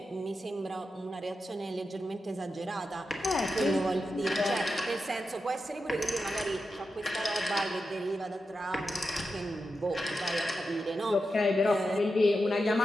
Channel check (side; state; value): both; normal; correlation 0.89